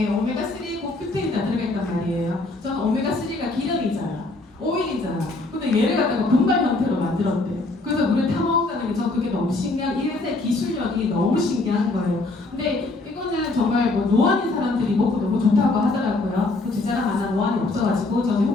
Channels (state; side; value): quieter; right; 3.1 dB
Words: 오메가3고 큐테인이 다 들어있단 말이에요. 저는 오메가3가 기름이잖아. 오일이잖아. 근데 얘를 갖다가 분말 형태로 만들었대. 그래서 물에 타먹는다는 게 저 그게 너무 신기한, 이래서 기술력이 너무 신기한 거예요. 근데 이거는 정말 뭐 노안인 사람들이 먹고 너무 좋다고 하더라고요. 그 제 자랑 하나 노안이 없어가지고 저는